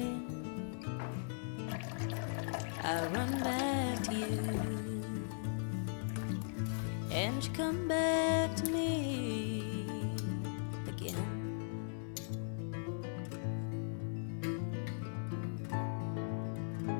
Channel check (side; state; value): right; silent; digital silence